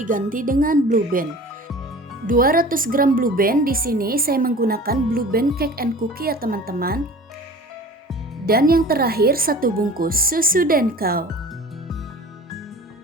dengan Blue Band. 200 gram Blue Band, di sini saya menggunakan Blue Band Cake and Cookie ya teman-teman. Dan yang terakhir 1 bungkus susu Denkau.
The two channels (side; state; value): both; normal; correlation 0.41